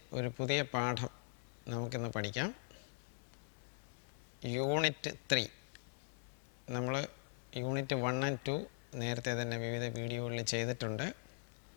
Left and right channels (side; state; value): right; silent; 50 dB below the other